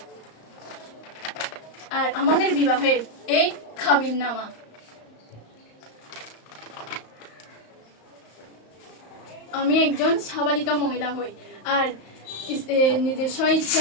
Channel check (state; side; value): late; right; 35 ms